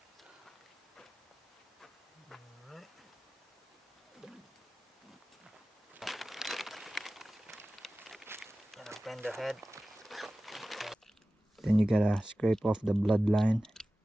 Alright. Gonna bend the head. Then you gotta scrape off the bloodline.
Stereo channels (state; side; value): normal; both; correlation 0.96